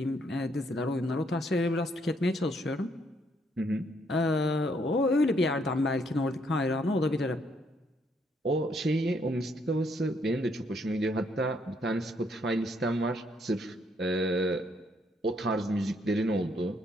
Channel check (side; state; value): both; normal; correlation 0.71